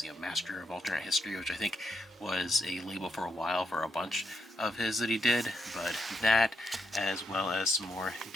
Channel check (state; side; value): normal; both; correlation 0.80